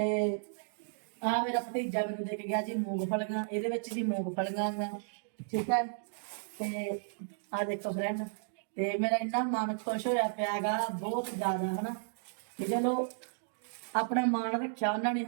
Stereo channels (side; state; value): left; silent; digital silence